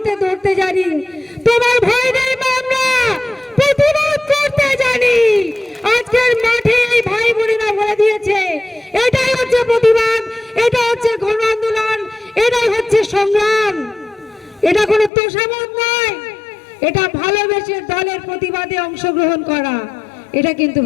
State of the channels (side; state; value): right; drops out; at 15.1 s